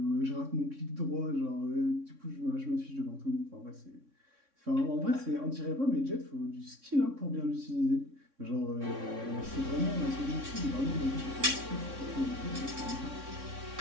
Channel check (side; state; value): left; late; 3.6 ms